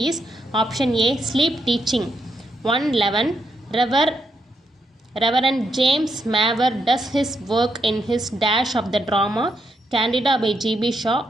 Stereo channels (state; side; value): normal; both; correlation 0.79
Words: is option A. Sleep teaching. 111. Reverend James Mavor does his work in his dash of the drama Candida by G.B. Shaw.